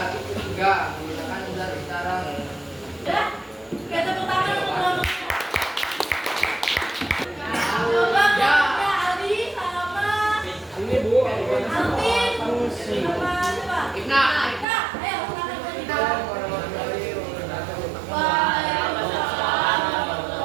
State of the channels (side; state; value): left; drops out; at 14.7 s